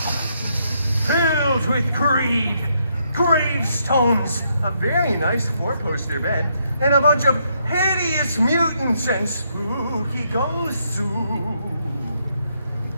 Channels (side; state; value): both; inverted; correlation -0.76